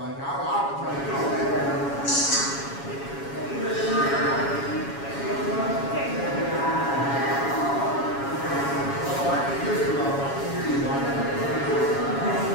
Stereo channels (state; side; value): late; right; 7.2 ms